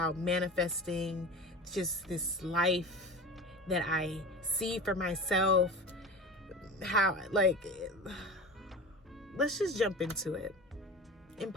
manifesting just this life that I see for myself. Let's just jump into it.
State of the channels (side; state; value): both; normal; correlation 0.32